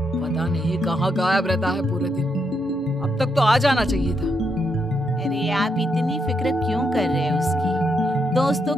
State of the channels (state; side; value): normal; both; correlation 0.80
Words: पता नहीं कहाँ गायब रहता है पूरे दिन, अब तक तो आ जाना चाहिए था। अरे आप इतनी फिक्र क्यों कर रहे हो उसकी? दोस्तों